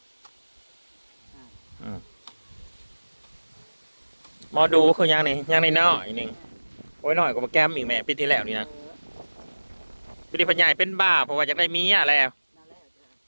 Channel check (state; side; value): inverted; both; correlation -1.00